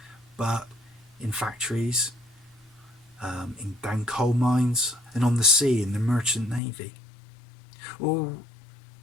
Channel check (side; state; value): right; drops out; at 6.6 s